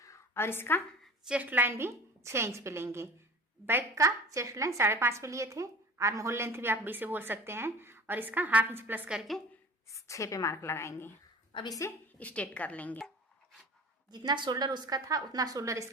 और इसका चेस्ट लाइन भी 6 इंच पे लेंगे। बैक का चेस्ट लाइन 5.5 पे लिए थे, आर्म होल लेंथ भी आप भी से बोल सकते हैं, और इसका 1/2 इंच प्लस करके 6 पे मार्क लगाएंगे। अब इसे स्ट्रेट कर लेंगे। जितना शोल्डर उसका था उतना शोल्डर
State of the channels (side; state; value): both; normal; correlation 0.40